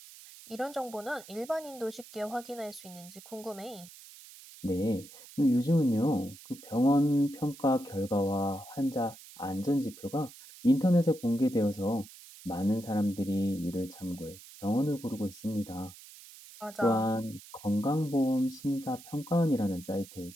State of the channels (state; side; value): noise; right; hiss, 18 dB below the sound